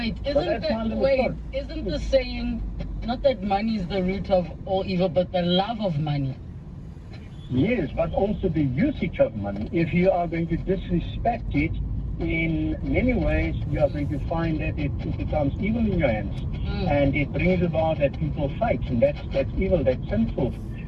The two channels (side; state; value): both; identical; correlation 1.00